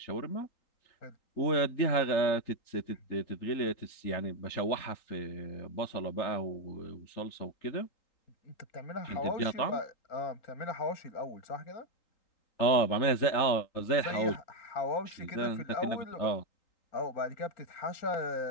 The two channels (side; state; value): right; late; 3.8 ms